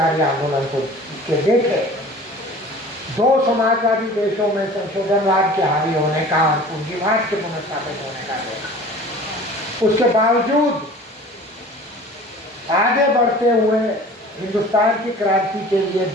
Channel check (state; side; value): normal; both; correlation 0.43